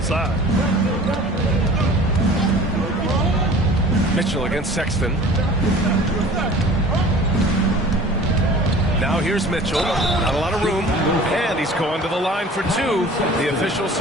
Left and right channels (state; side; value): normal; both; correlation 0.44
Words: Mitchell against Sexton. Now here's Mitchell. Not a lot of room. And he's going to the line for 2. The official